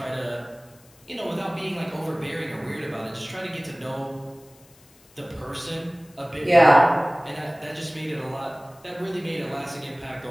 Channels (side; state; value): left; noise; hiss, 28 dB below the sound